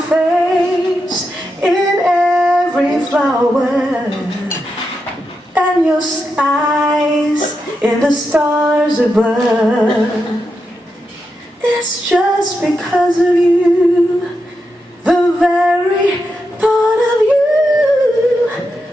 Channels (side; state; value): both; normal; correlation 0.86